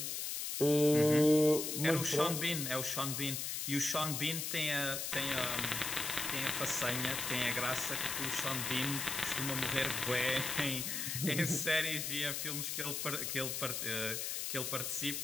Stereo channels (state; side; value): noise; left; hiss, 2 dB below the sound